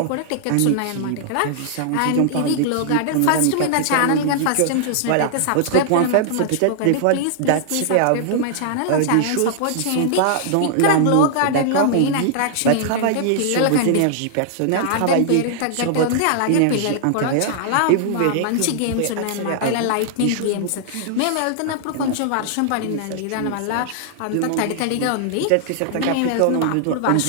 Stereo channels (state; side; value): different; both; correlation -0.01